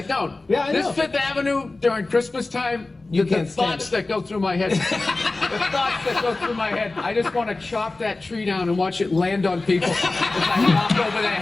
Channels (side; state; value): right; quieter; 3.3 dB